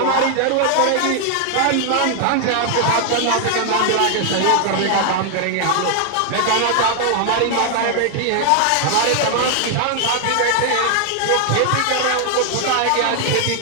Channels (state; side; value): different; both; correlation 0.00